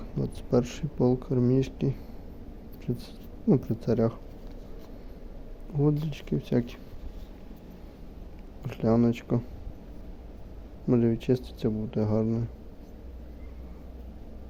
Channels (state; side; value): identical; both; correlation 1.00